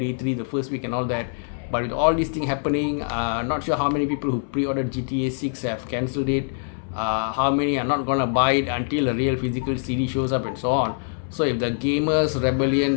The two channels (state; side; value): silent; right; 61 dB below the other